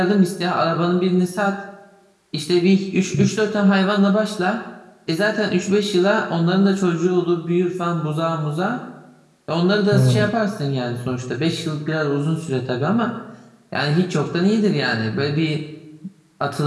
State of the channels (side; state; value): both; identical; correlation 1.00